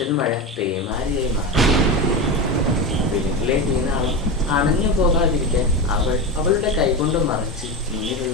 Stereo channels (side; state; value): both; normal; correlation 0.19